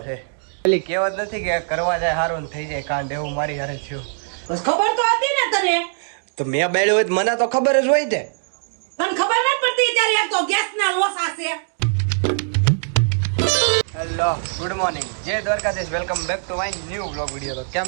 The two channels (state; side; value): silent; left; digital silence